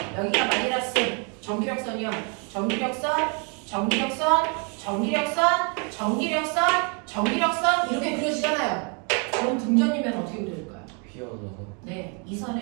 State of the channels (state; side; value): quieter; left; 35.9 dB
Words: 여기가 마이너스. 정기력선이요. 정기력선, 정기력선, 정기력선, 정기력선, 정기력선 이렇게 그려지잖아요. 그럼 등전이면 어떻게 그려질까요? 휘어져서. 네, 이